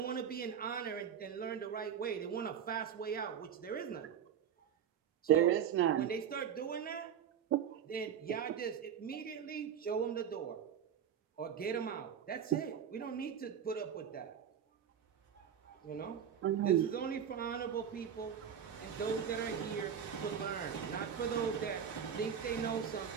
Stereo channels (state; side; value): quieter; left; 8.4 dB